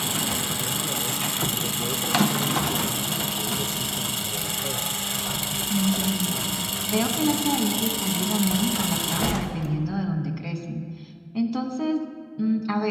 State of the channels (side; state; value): both; identical; correlation 1.00